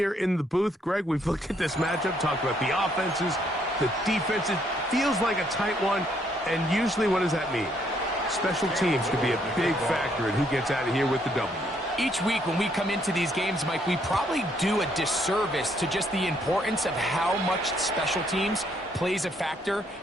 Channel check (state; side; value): normal; both; correlation 0.70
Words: in the booth. Greg, we've looked at this matchup, talked about the offenses, the defenses. Feels like a tight one, and usually what does that mean? Special teams could be a big factor in who gets out of here with the W. Each week when we come into these games, Mike, we probably do a disservice to just the importance of how much special teams plays a factor